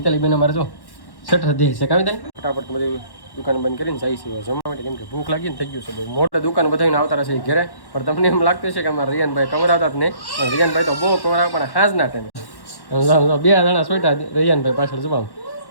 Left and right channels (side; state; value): right; late; 1.1 ms